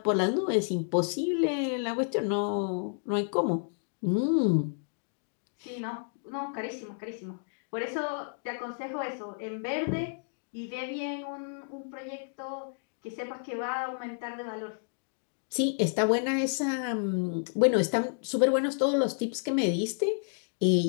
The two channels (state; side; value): silent; right; digital silence